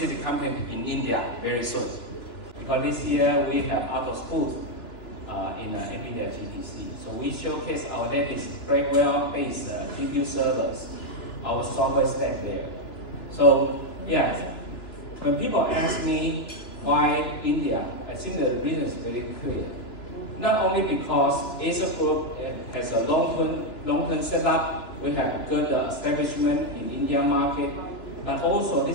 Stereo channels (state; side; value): late; right; 2.9 ms